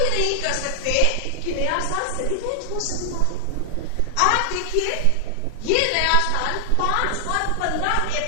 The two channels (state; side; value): different; both; correlation -0.01